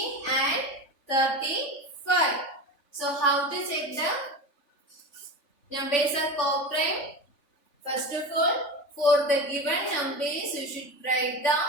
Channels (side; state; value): right; late; 3.5 ms